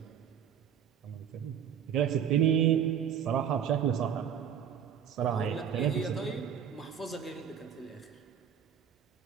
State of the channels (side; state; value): left; quieter; 8.5 dB